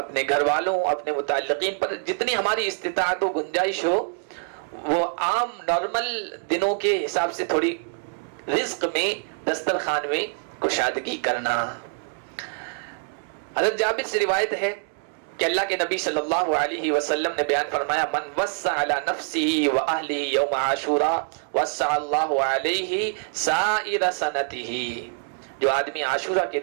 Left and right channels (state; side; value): silent; left; 62 dB below the other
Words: گھر والوں، اپنے متعلقین پر جتنی ہماری استطاعت و گنجائش ہو، وہ عام نارمل دنوں کے حساب سے تھوڑی رزق میں، دسترخوان میں کشادگی کرنا۔ حضرت جابر سے روایت ہے کہ اللہ کے نبی صلی اللہ علیہ وسلم نے بیان فرمایا من وسع علی نفسه واہلہ یوم عاشوراء وسع اللہ علیہ سائر سنتہ۔ جو آدمی عاشورہ کے